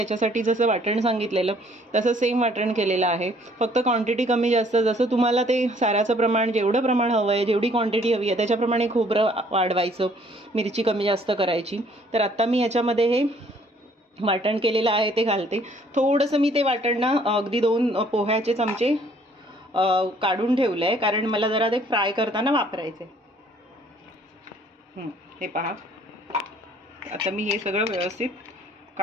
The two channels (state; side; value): normal; both; correlation 0.60